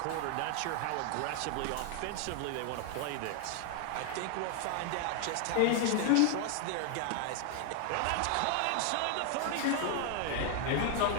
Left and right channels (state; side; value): different; both; correlation 0.00